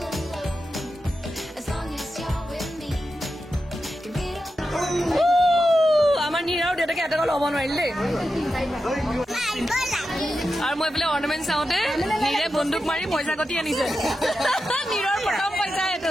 ইয়াতে ল'ব নোৱাৰিল দেই আৰু মই বোলে অৰ্নামেণ্ট চাওঁতে নীৰে বন্দুক মাৰি পইচা গতি আনিছে নীৰৰ প্ৰথম পইচা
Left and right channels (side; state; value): both; normal; correlation 0.90